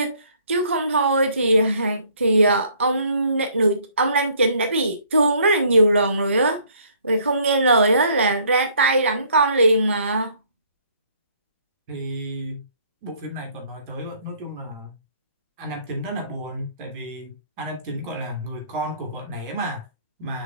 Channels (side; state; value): both; inverted; correlation -0.62